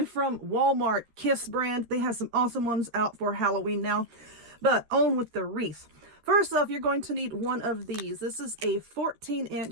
from Walmart, Kiss brand. They have some awesome ones out for Halloween now. But on with the wreath. First off, you're going to need one of these. This is a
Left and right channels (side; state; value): left; late; 13 ms